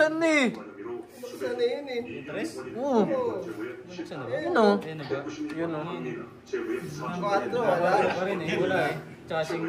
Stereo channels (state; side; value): identical; both; correlation 1.00